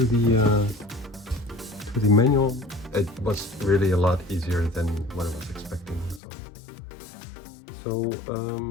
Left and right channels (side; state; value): right; drops out; at 6.2 s